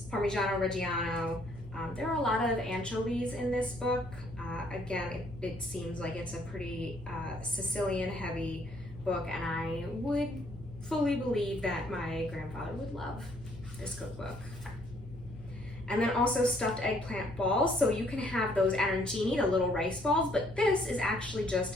Parmigiano Reggiano. There are a lot of anchovies in this book. Again, it seems like it's a pretty Sicilian heavy book, and I would fully believe that my grandfather would love this cookbook. And then also stuffed eggplant balls. So you can have those arancini, the little rice balls, but this is actually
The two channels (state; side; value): normal; both; correlation 0.65